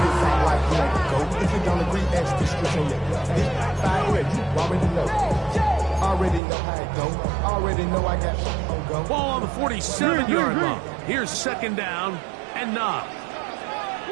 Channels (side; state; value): left; drops out; at 6.4 s